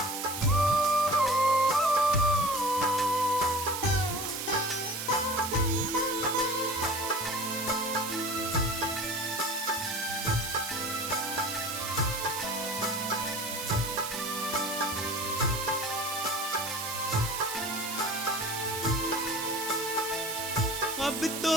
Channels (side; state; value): right; noise; hiss, 5 dB below the sound